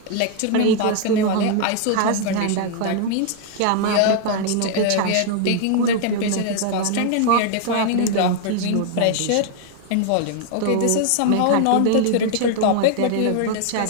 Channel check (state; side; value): different; both; correlation 0.00